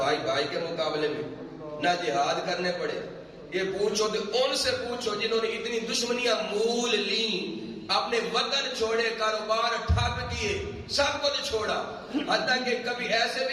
بھائی کے مقابلے میں، نہ جہاد کرنے پڑے۔ یہ پوچھو تو ان سے پوچھو جنہوں نے اتنی دشمنیاں مول لیں، اپنے وطن چھوڑے، کاروبار ٹھپ کیے، سب کچھ چھوڑا، حتیٰ کہ کبھی ایسے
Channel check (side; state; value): both; identical; correlation 1.00